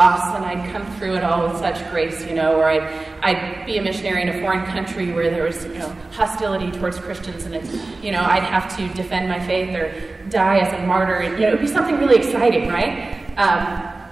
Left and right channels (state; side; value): quieter; left; 3.3 dB